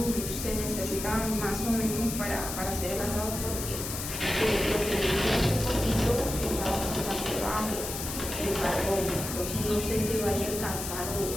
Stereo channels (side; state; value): left; noise; hiss, 6 dB below the sound